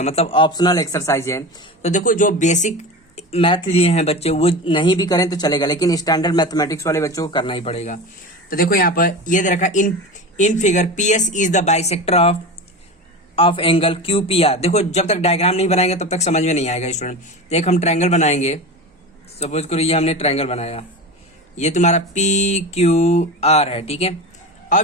मतलब ऑप्शनल एक्सरसाइज है। तो देखो, जो बेसिक मैथ लिए हैं बच्चे वो नहीं भी करें तो चलेगा, लेकिन स्टैंडर्ड मैथमेटिक्स वाले बच्चों को करना ही पड़ेगा। तो देखो यहाँ पर ये दे रखा in figure P S is the bisector of angle Q P R. देखो, जब तक डायग्राम नहीं बनाएंगे तब तक समझ में नहीं आएगा स्टूडेंट। तो एक हम ट्रायंगल बनाएंगे। सपोज करो ये हमने ट्रायंगल बनाया, ये तुम्हारा पी क्यू आर है, ठीक है।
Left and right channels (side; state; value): both; normal; correlation 0.28